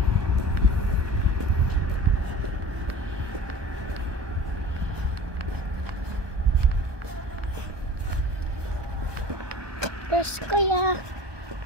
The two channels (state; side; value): late; left; 1.2 ms